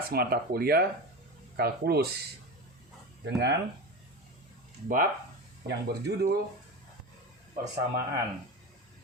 mata kuliah kalkulus dengan bab yang berjudul persamaan.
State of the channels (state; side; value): normal; both; correlation 0.25